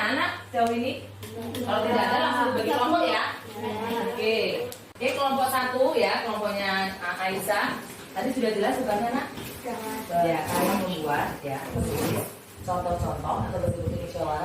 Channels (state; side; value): identical; both; correlation 1.00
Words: anak jauh ini? Kalau tidak ada langsung bagi kelompok ya. Oke. Oke, kelompok 1 ya, kelompoknya Aisyah. Tadi sudah jelas tugasnya nak? Ya, kalian membuat ya contoh-contoh atau bentuk